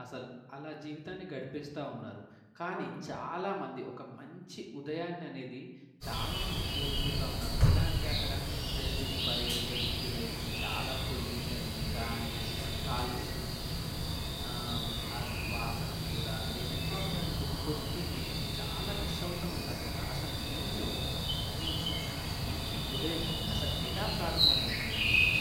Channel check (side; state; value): both; identical; correlation 1.00